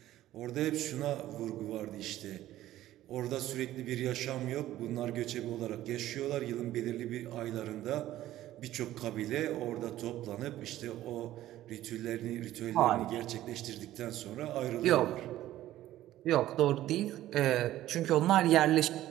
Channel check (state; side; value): quieter; left; 14.2 dB